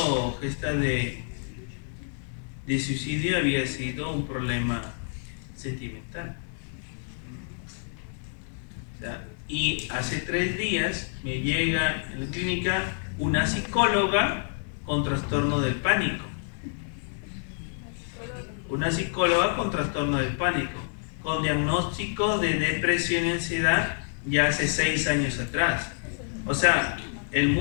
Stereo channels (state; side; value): silent; right; 59 dB below the other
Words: de suicidio había sido un problema sentimental. O sea, y hace 3 días me llega en la clínica una psicóloga con trastorno del pánico. Una psicóloga con trastorno del pánico, con diagnóstico de depresión y ansiedad ya hace 6 años atrás. O sea, el